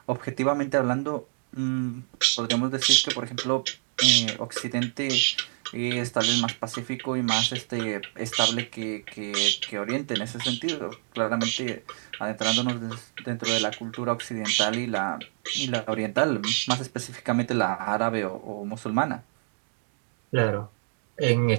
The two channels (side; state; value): left; silent; digital silence